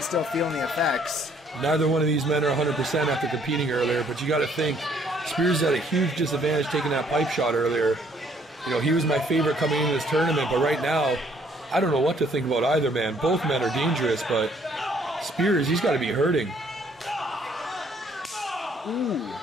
still feeling the effects. Neither one of these men are 100% after competing earlier, but you got to think Spears had a huge disadvantage taking that pipe shot earlier. You know, he was my favorite coming into this tournament, but right now, I don't know what to think about either man. Both men are dangerous, but Spears, he's got to be hurting. Ooh,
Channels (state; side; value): normal; both; correlation 0.64